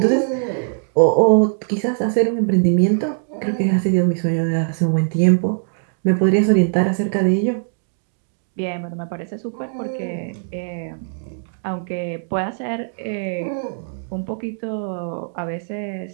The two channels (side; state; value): left; silent; digital silence